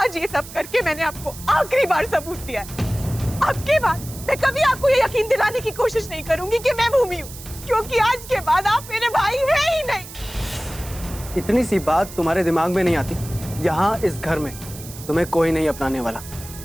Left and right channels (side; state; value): right; noise; hiss, 15 dB below the sound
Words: आज ये सब करके मैंने आपको आखिरी बार सबूत दिया है। अब के बाद मैं कभी आपको ये यकीन दिलाने की कोशिश नहीं करूंगी कि मैं भूमि हूँ, क्योंकि आज के बाद आप मेरे भाई हैं ही नहीं। इतनी सी बात तुम्हारे दिमाग में नहीं आती? यहाँ इस घर में तुम्हें कोई नहीं अपनाने वाला।